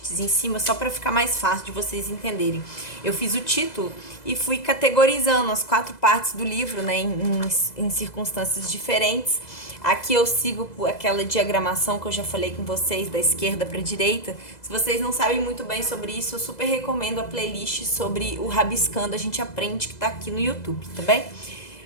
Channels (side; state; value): right; late; 2.0 ms